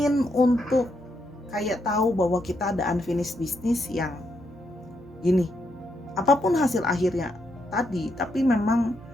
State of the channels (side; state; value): both; normal; correlation 0.79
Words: untuk kayak tahu bahwa kita ada unfinished business yang gini. Apapun hasil akhirnya tadi, tapi memang